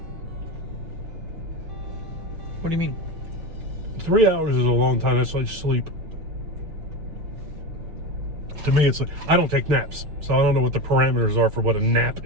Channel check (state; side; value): late; left; 6.4 ms